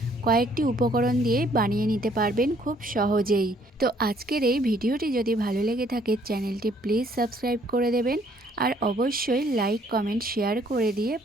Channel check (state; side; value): normal; both; correlation 0.63